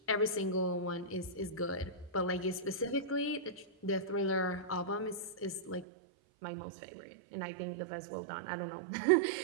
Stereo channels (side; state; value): left; drops out; at 5.9 s